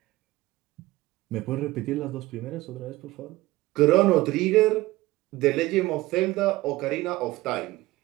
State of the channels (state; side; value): quieter; left; 18.7 dB